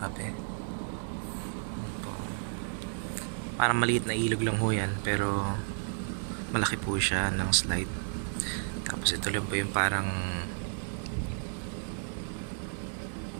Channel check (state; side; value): silent; left; digital silence